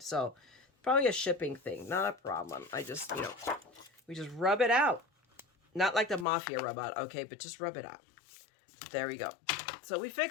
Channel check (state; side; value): drops out; right; at 6.2 s